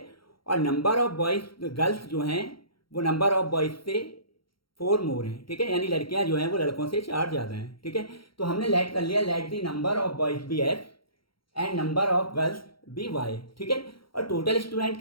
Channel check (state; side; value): late; right; 0.74 ms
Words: और नंबर ऑफ बॉयज़ गर्ल्स जो हैं वो नंबर ऑफ बॉयज़ से 4 मोर हैं। ठीक है, यानी लड़कियां जो हैं वो लड़कों से 4 ज़्यादा हैं। ठीक है, तो हमने लेट कर लिया, let the number of boys be x and number of girls be y. ठीक है, और टोटल स्टूडेंट